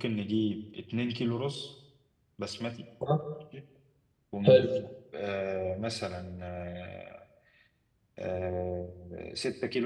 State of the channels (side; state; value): both; identical; correlation 1.00